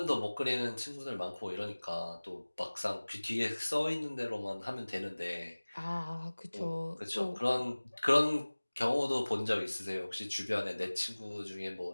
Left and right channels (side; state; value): both; inverted; correlation -1.00